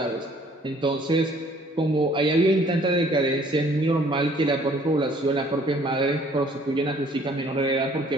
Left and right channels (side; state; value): both; normal; correlation 0.58